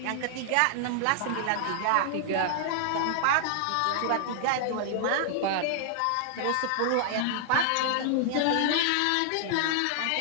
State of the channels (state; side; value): different; both; correlation -0.01